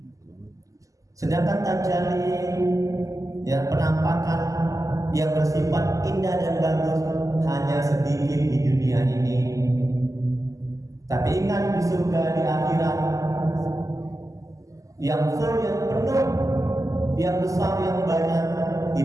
sedangkan tajalli, ya, penampakan yang bersifat indah dan bagus hanya sedikit di dunia ini. Tapi ingat, di surga, di akhirat, yang full, yang penuh, yang besar, yang banyak,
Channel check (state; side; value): late; left; 0.16 ms